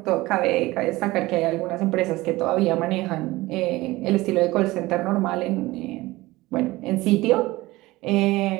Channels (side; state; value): left; quieter; 19.4 dB